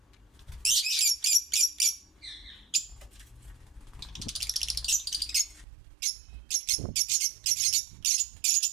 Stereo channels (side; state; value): left; drops out; at 5.7 s